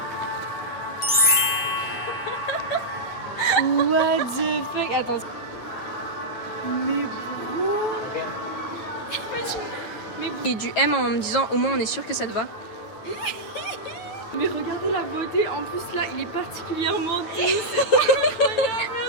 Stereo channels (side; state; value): right; late; 9.1 ms